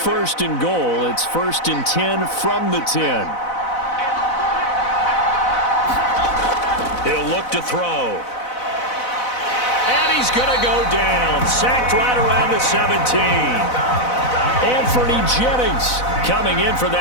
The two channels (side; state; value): right; late; 4.0 ms